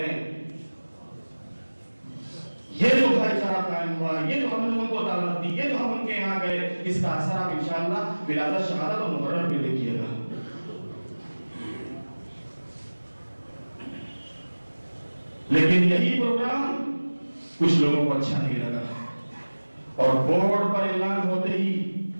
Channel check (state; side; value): inverted; both; correlation -1.00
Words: یہ جو بھائی چارہ قائم ہوا، یہ جو ہم نے ان کو دعوت دی، یہ جو ہم ان کے یہاں گئے، اس کا اثر آپ انشاءاللہ ولادت شہادت اور محرم میں دیکھیے گا۔ لیکن یہی پروگرام کچھ لوگوں کو اچھا نہیں لگا اور بورڈ پر اعلان ہوتے ہی